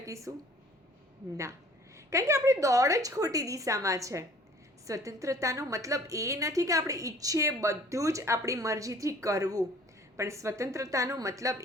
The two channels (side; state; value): both; normal; correlation 0.52